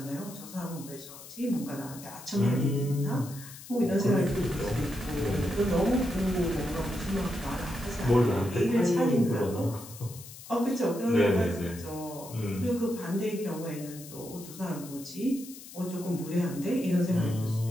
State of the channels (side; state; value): left; noise; hiss, 16 dB below the sound